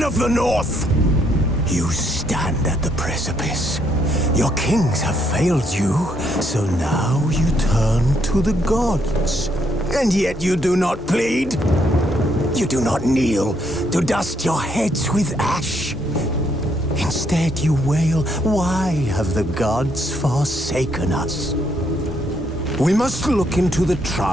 of the North, you stand at the precipice. Your kings have failed you, so now you turn to the gods. And yet you do not plead. You do not kneel to dust your heads with ash. Instead you wail, why have the gods forsaken us? We must look into the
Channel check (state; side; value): normal; both; correlation 0.72